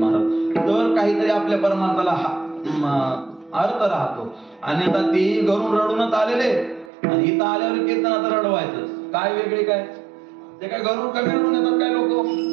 तर काहीतरी आपल्या परमार्थाला अर्थ राहतो. आणि आता तेही घरून रडूनच आलेले आणि इथं आल्यावर कीर्तनात रडवायचं काय वेगळे काय, ते काय घरून कमी रडून येतात काय लोक,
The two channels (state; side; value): drops out; left; at 6.9 s